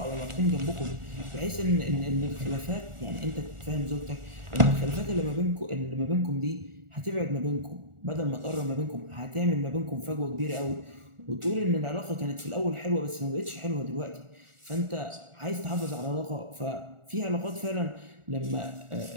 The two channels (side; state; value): left; late; 1.4 ms